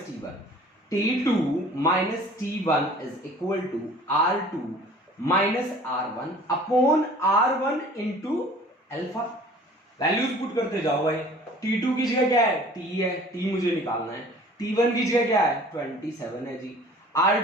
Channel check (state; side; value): normal; both; correlation 0.48